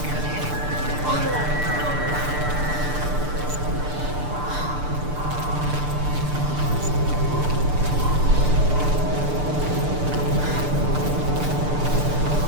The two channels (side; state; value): left; late; 6.7 ms